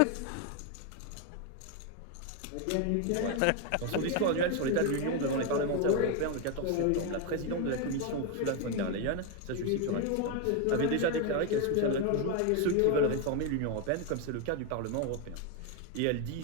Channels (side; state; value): both; different; correlation 0.01